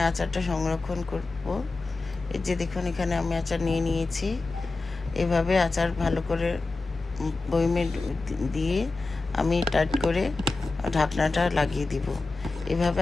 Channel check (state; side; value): quieter; right; 3.5 dB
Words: আচারটা সংরক্ষণ করব। এই যে দেখুন, এখানে আমি আচার নিয়ে নিয়েছি। এভাবে আচার ভালো করে বয়মে দিয়ে আমি টাইট করে ঢাকনাটা লাগিয়ে দিব। এভাবে